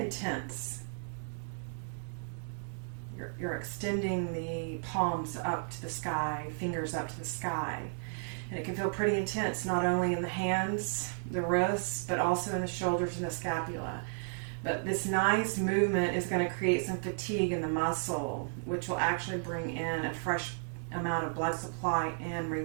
You're extending the palms up to the sky, fingers up to the sky. And it can feel pretty intense, not only in the hands, the wrists, but also in the shoulders and the scapula. But this nice movement is going to create some fatigue in the muscle, which will actually bring in a fresh amount of blood supply and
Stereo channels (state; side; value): silent; left; digital silence